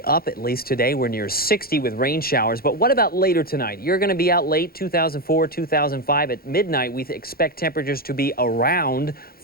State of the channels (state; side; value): late; right; 0.44 ms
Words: At least today, we're near 60 with rain showers. But what about later tonight? You're going to be out late, 2004, 2005. At midnight, we expect temperatures to be around